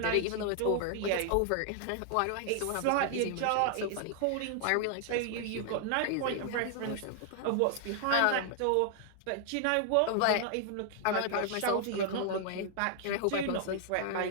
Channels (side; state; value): both; different; correlation 0.00